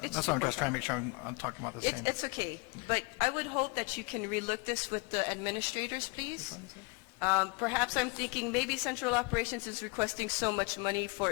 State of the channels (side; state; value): right; quieter; 29.4 dB